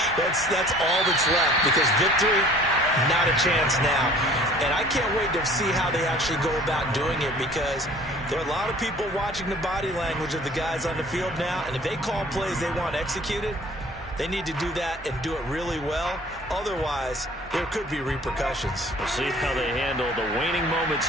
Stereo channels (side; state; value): both; normal; correlation 0.50